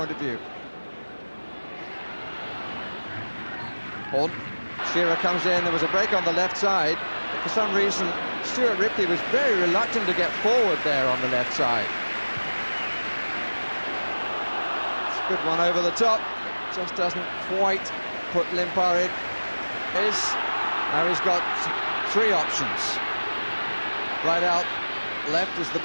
of view. Horne, Shearer comes in, there was a break on the left side, but for some reason Stuart Ripley was very reluctant to get forward there on the left side. It's a good one over the top, just doesn't quite put Limpar in. Now he's got three options. Right out left is the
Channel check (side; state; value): both; inverted; correlation -1.00